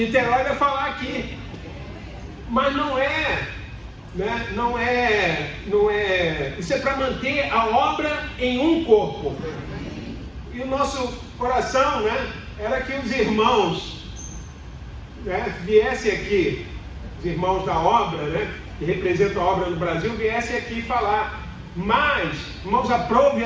vai falar aqui, mas não é, né? Não é. Isso é para manter a obra em um corpo. E o nosso coração, né, era que os irmãos, né, viessem aqui, os irmãos da obra, né, que representam a obra do Brasil, viessem aqui falar. Mas, irmãos, aprove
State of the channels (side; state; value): both; identical; correlation 1.00